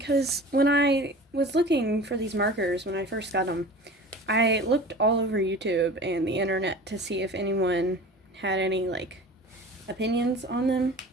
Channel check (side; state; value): both; normal; correlation 0.38